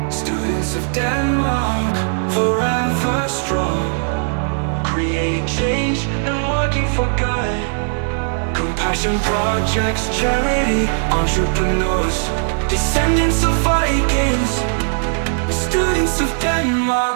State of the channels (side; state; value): left; silent; 67 dB below the other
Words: Students of Denmark, forever strong. Creating change and working for good. Compassion projects, charity, entrepreneurs, descendants of Vikings. Students of